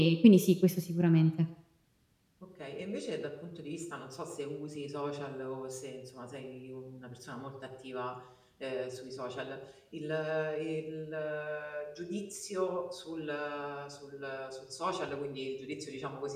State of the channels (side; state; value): both; identical; correlation 1.00